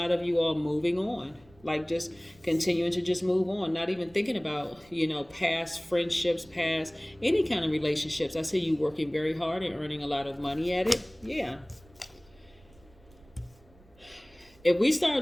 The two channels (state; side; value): noise; right; rumble, 27 dB below the sound